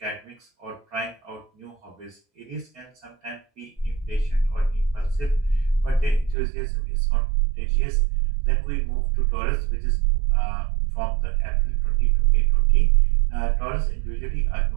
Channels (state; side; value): drops out; left; at 6.4 s